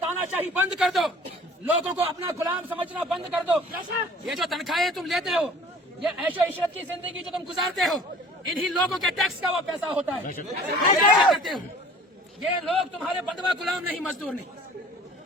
شاہی بند کر دو, لوگوں کو اپنا غلام سمجھنا بند کر دو. یہ جو تنخواہیں تم لیتے ہو, یہ عیش و عشرت کی زندگی جو تم گزارتے ہو, انہی لوگوں کے ٹیکس کا وہ پیسہ ہوتا ہے. کرتے ہو, یہ لوگ تمہارے بندوا غلام نہیں, مزدور نہیں,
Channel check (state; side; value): normal; both; correlation 0.48